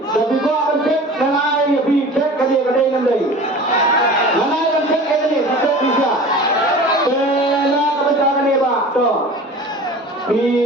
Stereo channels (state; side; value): normal; both; correlation 0.39